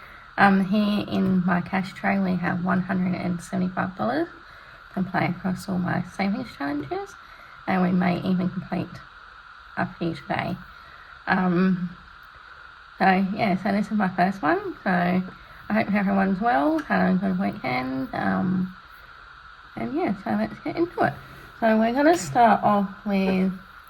Here in my cash tray we have $175 to play across all my savings challenges, and we may even complete a few today. So this is my first one. So I hope everyone's well, had a good weekend, so let's get into it. So we're going to start off with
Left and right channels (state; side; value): identical; both; correlation 1.00